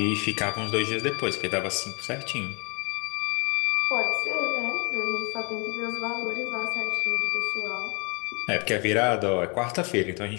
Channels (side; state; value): right; quieter; 32.8 dB